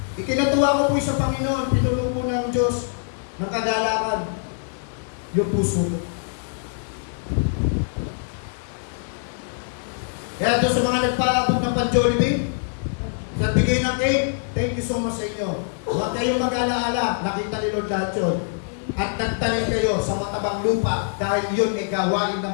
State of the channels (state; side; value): silent; right; digital silence